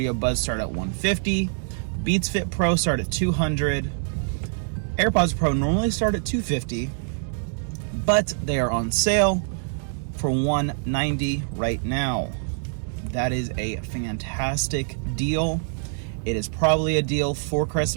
Buds start at $150, Beats Fit Pro start at $200, AirPods Pro normally start at $250, but they are on sale for $190 right now. That is a fantastic deal. It is probably a deal for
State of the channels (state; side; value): silent; left; digital silence